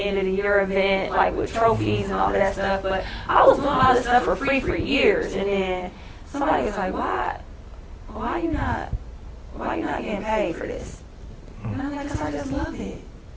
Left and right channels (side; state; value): both; identical; correlation 1.00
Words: of the year event, with trophies and all of that stuff. But I was doing all this stuff for free for years, and then somebody was like, why you not getting paid for this? And I'm like, 'cause I just love it.